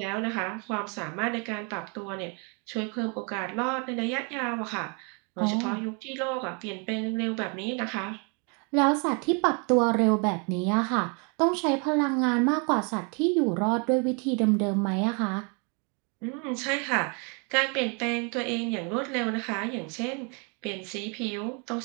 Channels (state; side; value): quieter; left; 35.4 dB